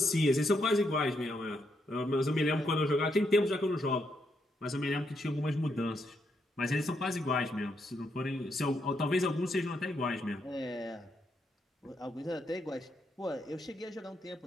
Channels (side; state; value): both; normal; correlation 0.78